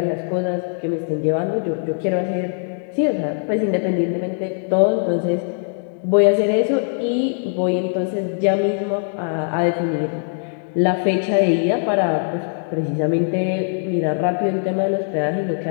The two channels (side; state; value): right; silent; digital silence